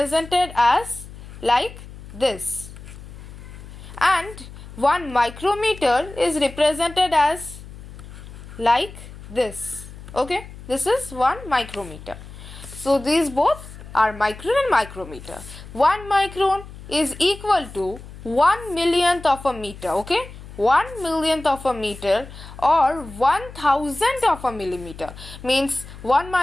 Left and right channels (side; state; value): left; noise; hum, 15 dB below the sound